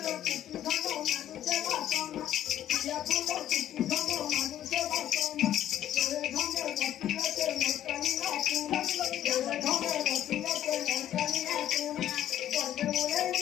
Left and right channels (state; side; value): quieter; right; 11.7 dB